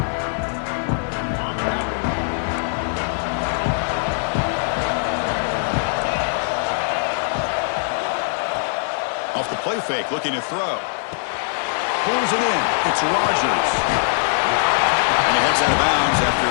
Off the play fake, looking to throw. Pulls it in. It's Rodgers. And he heads out of bounds after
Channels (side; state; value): right; silent; digital silence